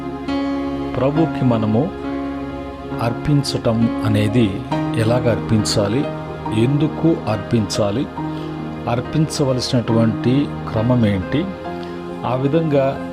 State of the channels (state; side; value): identical; both; correlation 1.00